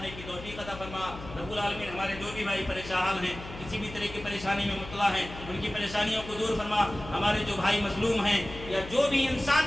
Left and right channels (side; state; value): left; noise; hum, 13 dB below the sound